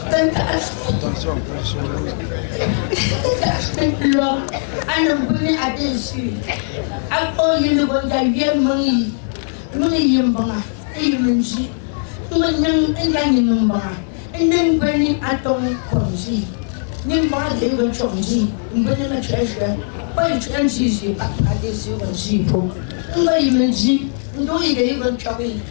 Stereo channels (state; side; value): silent; right; digital silence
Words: attention, ana buni adesu ako yinu gonja yemangi muni yembanga eyimenji nganyang enyanyi numbanga enen bani atong konji nimba de go chonji mbani ma chesha bai chanji ji adesu gonji po ngai menji ndo yige go chobi